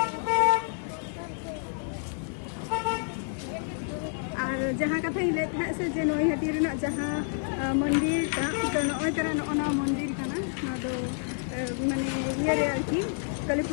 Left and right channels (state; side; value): silent; right; 59 dB below the other